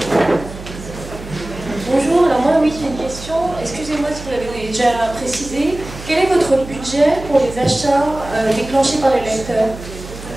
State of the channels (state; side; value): noise; right; hum, 13 dB below the sound